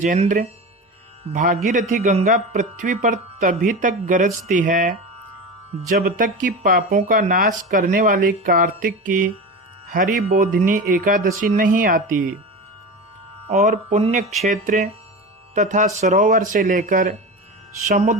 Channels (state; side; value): normal; both; correlation 0.26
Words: भागीरथी गंगा पृथ्वी पर तभी तक गरजती है जब तक कि पापों का नाश करने वाली कार्तिक की हरि बोधिनी एकादशी नहीं आती, और पुण्य क्षेत्र तथा सरोवर से लेकर